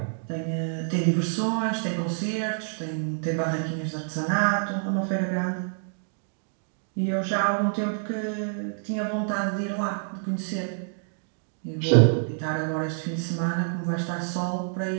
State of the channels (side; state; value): left; silent; digital silence